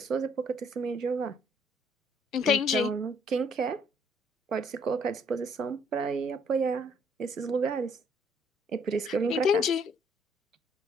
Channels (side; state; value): both; normal; correlation 0.64